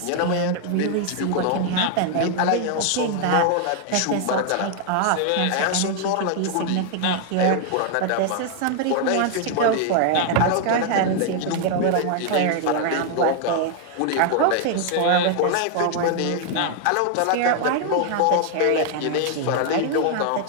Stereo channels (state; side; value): different; both; correlation 0.00